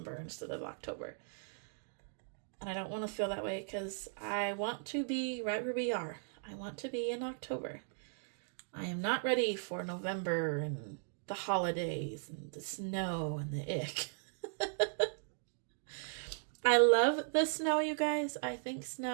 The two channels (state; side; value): silent; left; digital silence